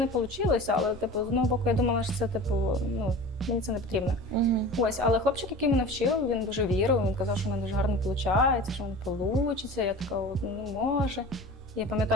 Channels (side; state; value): both; normal; correlation 0.37